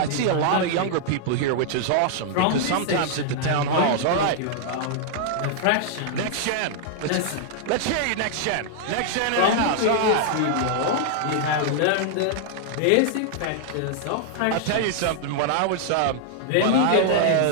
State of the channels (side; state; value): both; different; correlation -0.01